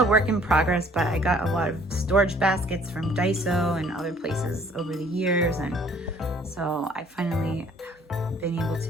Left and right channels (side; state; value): both; normal; correlation 0.58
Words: work in progress, but I got a lot of storage baskets from Daiso and other places over the years. And so I finally have been able to